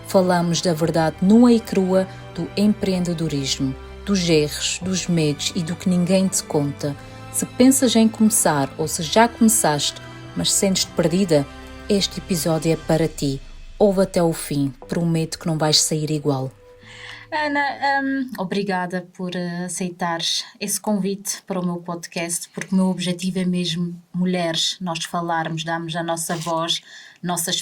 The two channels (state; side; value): identical; both; correlation 1.00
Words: Falamos da verdade nua e crua do empreendedorismo, dos erros, dos medos e do que ninguém te conta. Se pensas em começar ou se já começaste, mas sentes-te perdida, este episódio é para ti. Ouve até o fim, prometo que não vais sair igual. Ana, obrigada por aceitares esse convite para o meu podcast, porque o meu objetivo é mesmo mulheres, nós falarmos, darmos a nossa voz, nossa